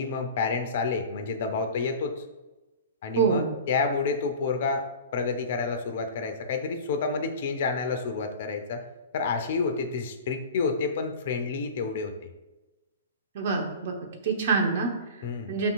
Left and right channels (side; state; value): both; inverted; correlation -0.36